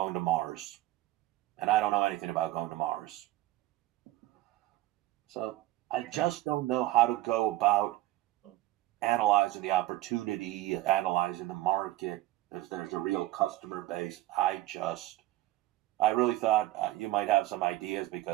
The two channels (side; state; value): left; quieter; 16.4 dB